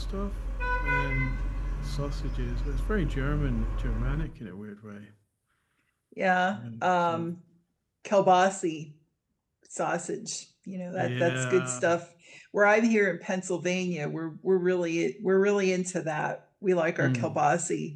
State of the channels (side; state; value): both; identical; correlation 1.00